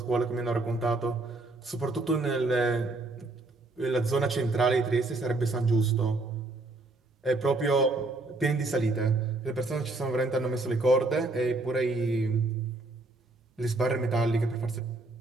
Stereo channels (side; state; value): left; quieter; 3.1 dB